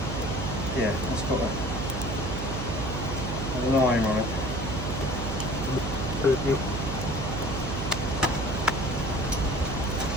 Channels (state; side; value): noise; right; hum, 3 dB below the sound